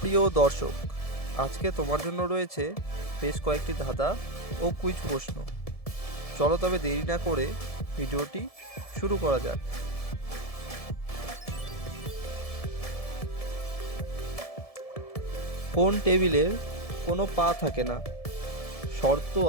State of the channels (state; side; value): late; right; 1.7 ms